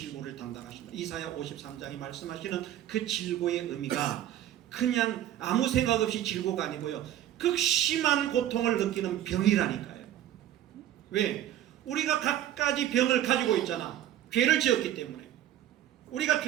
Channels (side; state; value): left; quieter; 11.9 dB